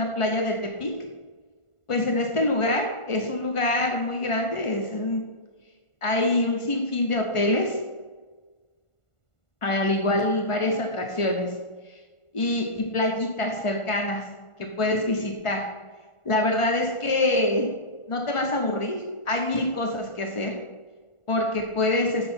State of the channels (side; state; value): right; late; 1.5 ms